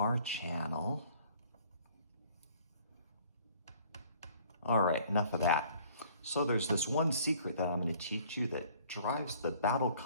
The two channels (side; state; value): both; inverted; correlation -0.55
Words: channel. All right, enough of that. So there's this one secret that I'm going to teach you that drives the battle